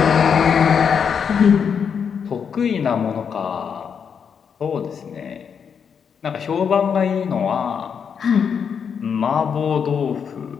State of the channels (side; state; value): right; quieter; 6.9 dB